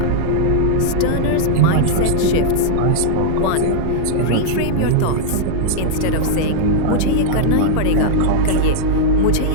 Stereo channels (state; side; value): different; both; correlation -0.01